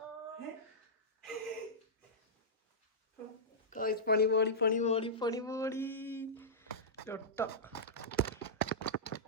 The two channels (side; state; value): both; normal; correlation -0.14